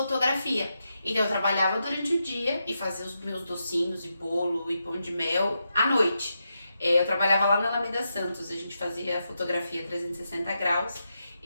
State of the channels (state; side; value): inverted; both; correlation -0.86